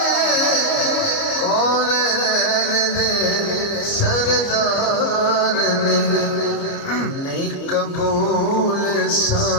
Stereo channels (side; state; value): right; late; 29 ms